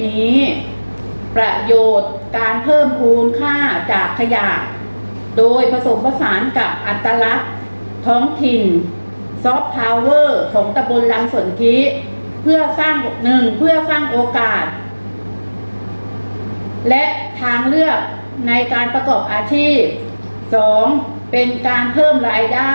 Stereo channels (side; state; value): both; inverted; correlation -1.00